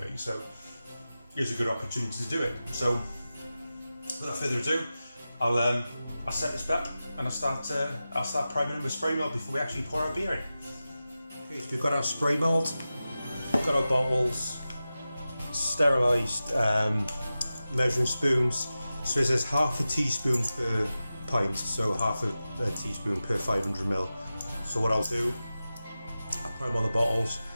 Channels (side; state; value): both; inverted; correlation -0.94